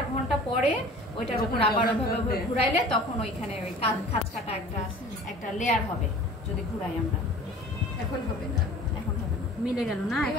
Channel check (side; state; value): both; normal; correlation 0.44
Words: ঘন্টা পরে ওইটার উপর আবার ওইভাবে ঘুরাইলে তখন ওইখানে ওই খাঁজ কাটা একটা লেয়ার হবে যদি ঘুরাই আমরা। এখন হবে না। এখন হবে না, মিলে গেল না?